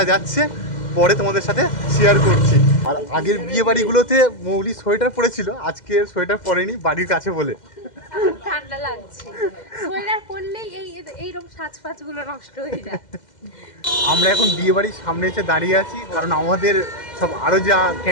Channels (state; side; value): late; right; 2.1 ms